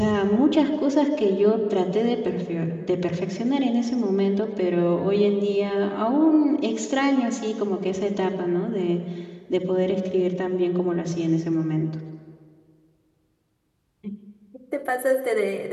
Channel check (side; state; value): both; identical; correlation 1.00